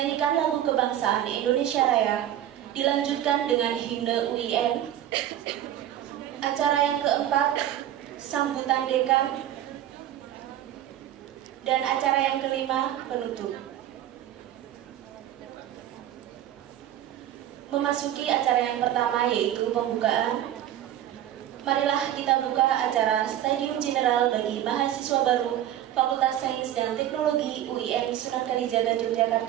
lagu kebangsaan Indonesia Raya, dilanjutkan dengan himne UIN. Acara yang keempat, sambutan dekan. Dan acara yang kelima, penutup. Memasuki acara yang pertama, yaitu pembukaan. Marilah kita buka acara Stadium General bagi mahasiswa baru Fakultas Sains dan Teknologi UIN Sunan Kalijaga,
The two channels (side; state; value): left; quieter; 11.8 dB